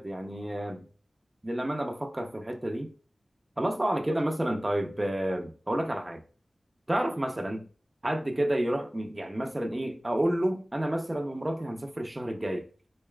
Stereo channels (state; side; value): normal; both; correlation 0.98